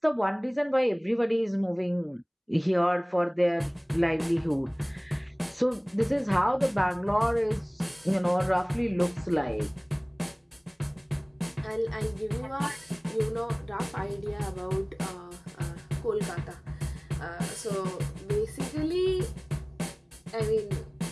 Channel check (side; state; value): both; identical; correlation 1.00